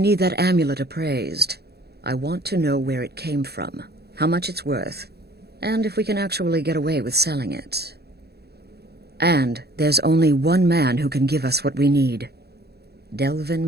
that amulet appraised. I want to know where it came from, how much it's worth. and if we can actually get away with selling it. And there's only one man who can give us what we need.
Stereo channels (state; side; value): late; left; 0.47 ms